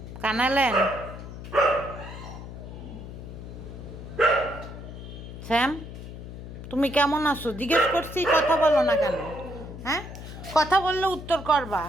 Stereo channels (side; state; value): left; noise; hum, 11 dB below the sound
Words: কানালেন শ্যাম, তুমি কেমন আছো জিজ্ঞেস করছি, কথা বলো না কেন? হ্যাঁ, কথা বললে উত্তর করবা।